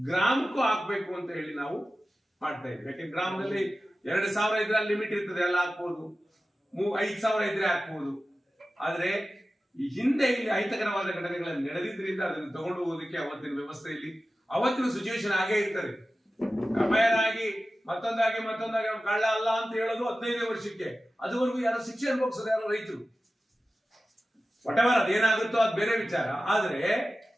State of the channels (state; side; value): normal; both; correlation 0.95